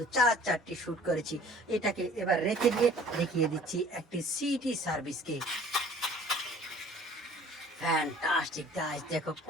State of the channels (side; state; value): both; normal; correlation 0.51